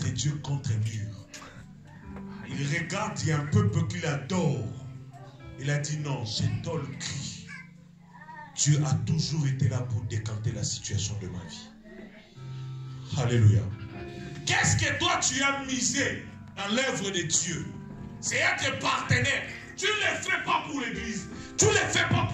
Dieu contre mur. Il regarde, il y a un peuple qu'il adore. Il a dit non, j'entends le cri. Dieu a toujours été là pour décanter la situation de ma vie. Alléluia. Qu'est-ce que toi tu as misé dans l'œuvre de Dieu? C'est être partenaire. Tu ne le fais pas pour l'église. Tu ne le fais pas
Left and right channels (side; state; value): both; identical; correlation 1.00